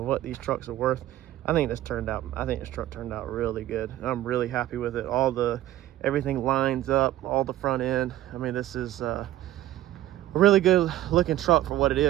what these trucks are worth. I think this truck turned out really good. I'm really happy with it. Everything lines up, all the front end. I mean, this is a really good looking truck for what it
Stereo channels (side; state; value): left; quieter; 14.3 dB